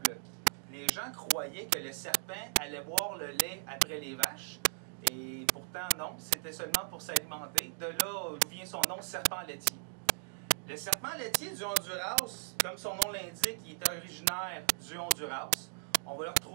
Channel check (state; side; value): silent; left; digital silence